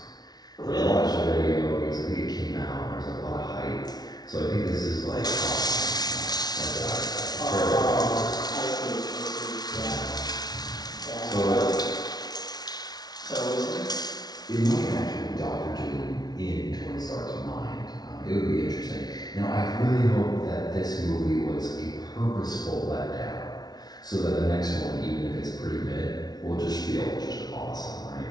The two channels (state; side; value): late; right; 0.19 ms